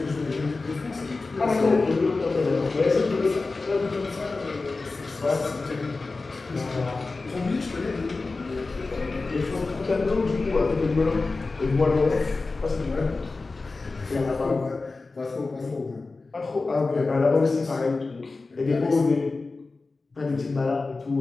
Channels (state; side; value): quieter; right; 3.7 dB